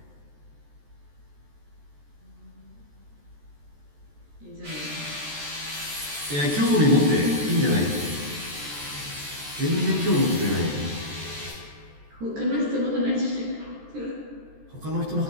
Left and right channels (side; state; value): left; late; 14 ms